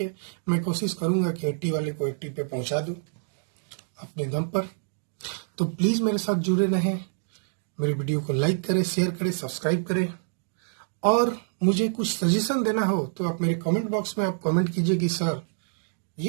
मैं कोशिश करूंगा कि 80 वाले को 80 पे पहुंचा दूं अपने दम पर। तो प्लीज मेरे साथ जुड़े रहें, मेरे वीडियो को लाइक करें, शेयर करें, सब्सक्राइब करें, और मुझे कुछ सजेशन देना हो तो आप मेरे कमेंट बॉक्स में आप कमेंट कीजिए कि सर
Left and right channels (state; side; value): silent; left; digital silence